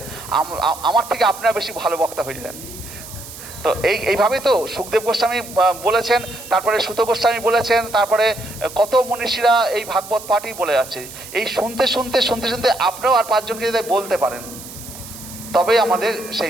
আমার থেকে আপনারা বেশি ভালো বক্তা হয়ে যান। তো এইভাবেই তো সুখদেব গোস্বামী বলেছেন, তারপরে সুত গোস্বামী বলেছেন, তারপরে কত মনীষীরা এই ভাগবত পাঠই বলে যাচ্ছে। এই শুনতে শুনতে শুনতে শুনতে আপনারাও আর 5 জনকে যদি বলতে পারেন, তবেই আমাদের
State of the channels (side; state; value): right; noise; hiss, 14 dB below the sound